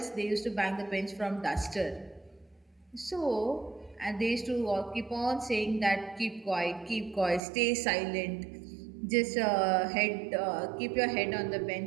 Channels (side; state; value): left; drops out; at 7.4 s